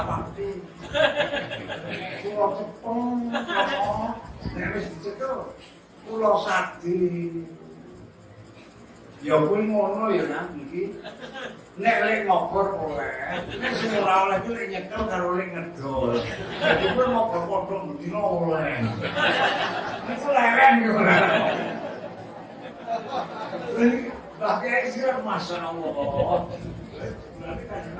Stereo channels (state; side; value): identical; both; correlation 1.00